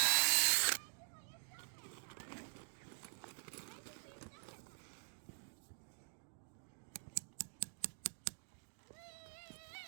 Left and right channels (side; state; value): left; silent; digital silence